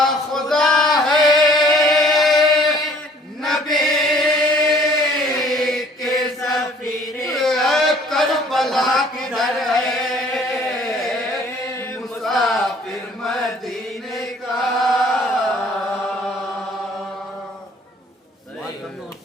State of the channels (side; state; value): both; normal; correlation 0.56